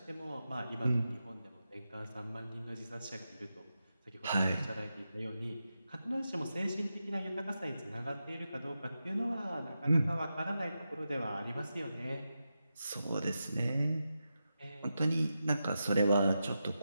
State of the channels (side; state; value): both; inverted; correlation -0.89